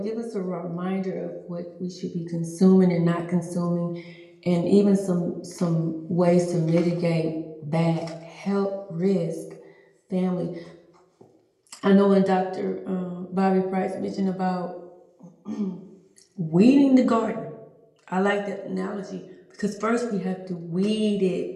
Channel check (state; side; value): identical; both; correlation 1.00